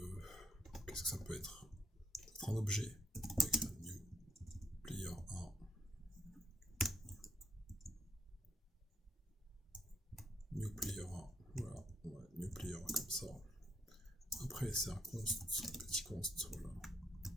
qu'est-ce que ça peut être? Un objet. New player 1. New player 1. Voilà. New player 1 comme ça. Après, c'est un const, petit const. Voilà.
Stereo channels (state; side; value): normal; both; correlation 0.72